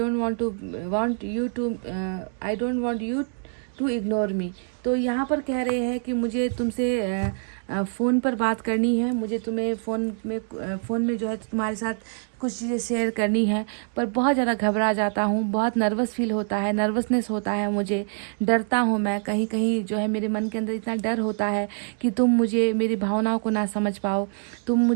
want you to ignore me. तो यहाँ पर कह रहे हैं कि मुझे तुमसे फ़ोन पर बात करनी है, मुझे तुम्हें फ़ोन में जो है तुम्हारे साथ कुछ चीज़ें शेयर करनी है, पर बहुत ज़्यादा घबरा जाता हूँ, बहुत नर्वस फील होता है, नर्वसनेस होता है मुझे, डरता हूँ मैं। कहीं कहीं जो है मेरे मन के अंदर इतना डर होता है कि तुम मुझे, मेरी भावनाओं को ना समझ पाओ, तुम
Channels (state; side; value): silent; left; 56 dB below the other